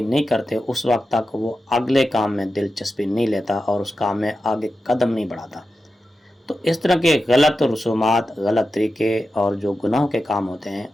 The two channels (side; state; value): both; normal; correlation 0.91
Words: نہیں کرتے اس وقت تک وہ اگلے کام میں دلچسپی نہیں لیتا اور اس کام میں آگے قدم نہیں بڑھاتا۔ تو اس طرح کے غلط رسومات، غلط طریقے اور جو گناہوں کے کام ہوتے ہیں